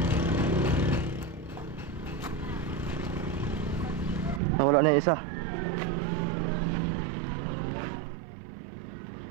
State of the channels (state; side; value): drops out; left; at 4.4 s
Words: Nawala na yung isa.